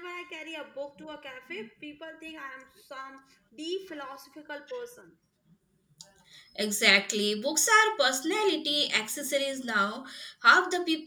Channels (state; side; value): identical; both; correlation 1.00